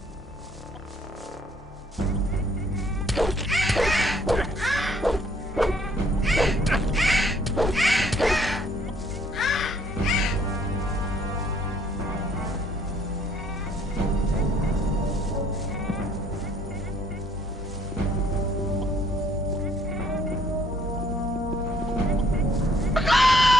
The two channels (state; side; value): normal; both; correlation 0.63